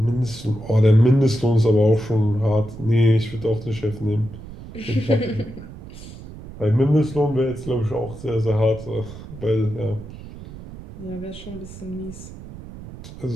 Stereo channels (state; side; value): noise; right; rumble, 14 dB below the sound